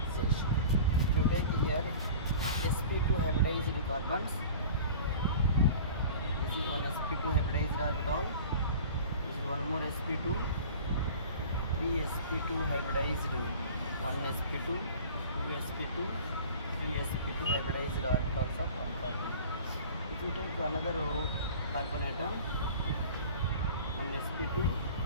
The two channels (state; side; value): inverted; both; correlation -0.41